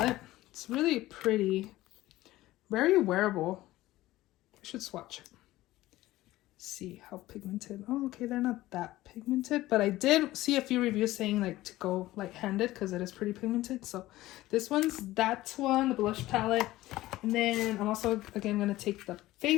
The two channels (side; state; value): right; quieter; 16.7 dB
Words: It's really pretty. Very wearable. I should swatch it. See how pigmented. Oh, okay, they're not that pigmented, but I did see a few reviews saying like to go light-handed because it is pretty pigmented. So this one's that one, the blush palette. And then I'm also again going to take the